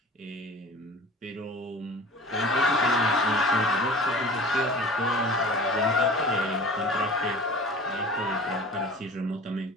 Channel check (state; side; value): normal; both; correlation 0.40